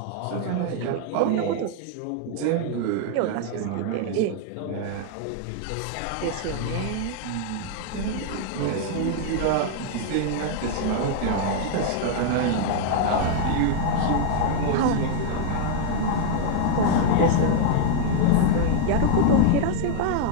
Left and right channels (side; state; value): both; different; correlation 0.00